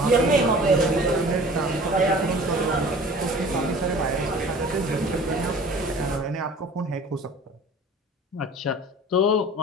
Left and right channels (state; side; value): normal; both; correlation 0.45